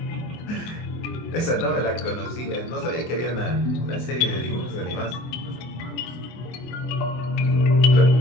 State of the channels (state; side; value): late; right; 24 ms